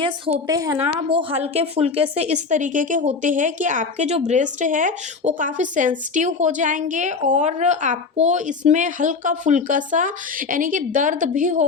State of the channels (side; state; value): right; quieter; 4.7 dB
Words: होते हैं ना, वो हल्के फुल्के से इस तरीके के होते हैं कि आपके जो ब्रेस्ट है वो काफ़ी सेंसिटिव हो जाएंगे, और आपको इसमें हल्का फुल्का सा यानी कि दर्द भी